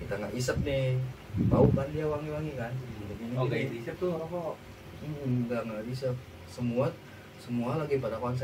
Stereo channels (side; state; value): both; identical; correlation 1.00